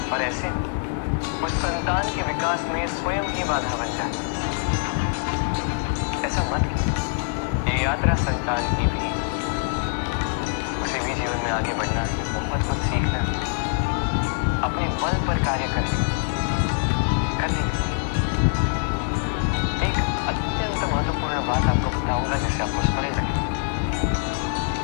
और ऐसे उस संतान के विकास में स्वयं ही बाधा बन जाते हैं। ऐसा मत कीजिए। ये यात्रा संतान की भी, उसे भी जीवन में आगे बढ़ना है, बहुत कुछ सीखना है, अपने बल पर कार्य करने एक अत्यंत महत्वपूर्ण बात आपको बताऊंगा जिसे आपको स्मरण रखें।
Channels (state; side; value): silent; right; digital silence